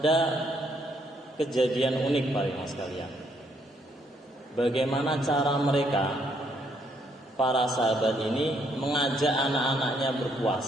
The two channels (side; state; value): both; normal; correlation 0.71